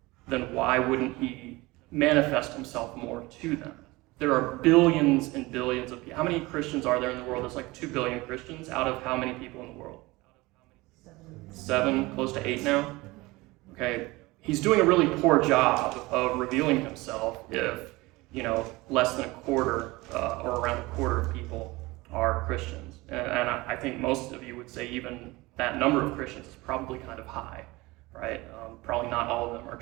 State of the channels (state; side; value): quieter; left; 21.6 dB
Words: then why wouldn't he manifest himself more to them? There are billions and billions of people. How many Christians are there in the world? There's like 2 billion Christians out of how many people in the world? 7, close to 8 now? Okay, he's doing a really poor job of revealing himself if, less than a quarter or around a quarter of people are Christians. And I think most of you would say even that number of Christians is probably kind of high, right? Probably not all of them are